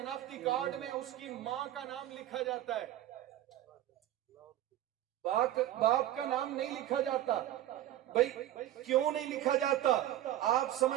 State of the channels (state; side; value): quieter; left; 13.1 dB